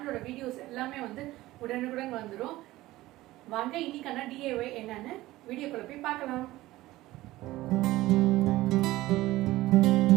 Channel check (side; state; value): left; quieter; 17.3 dB